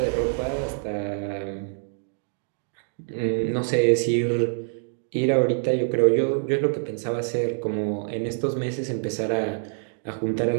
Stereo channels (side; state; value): left; silent; digital silence